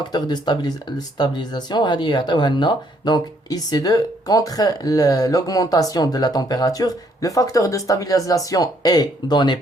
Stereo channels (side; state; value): both; normal; correlation 0.68